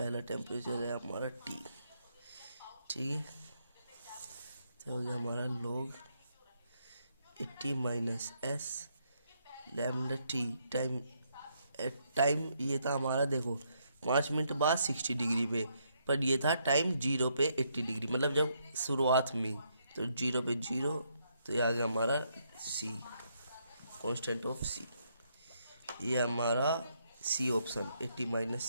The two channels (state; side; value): inverted; both; correlation -0.75